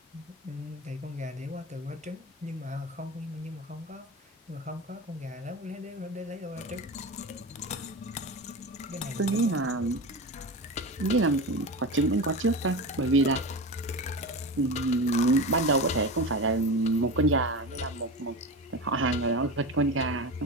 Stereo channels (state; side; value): normal; both; correlation 0.26